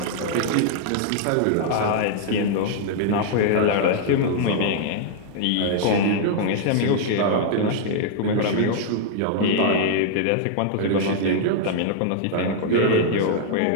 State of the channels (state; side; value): different; both; correlation -0.01